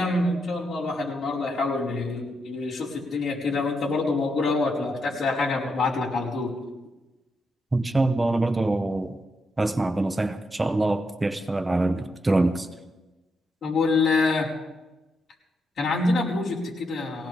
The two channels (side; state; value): both; normal; correlation 0.82